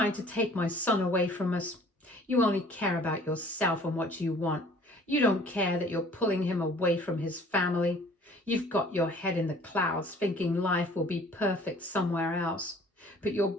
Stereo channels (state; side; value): normal; both; correlation 0.52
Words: to take my son away from us. You only care about yourself and what you want. You don't care that you're pulling him away from his family. You've got your head in the clouds thinking life will be perfect somewhere else, but you're